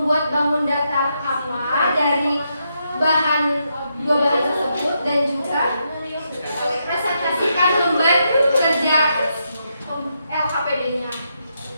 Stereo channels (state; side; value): inverted; both; correlation -0.81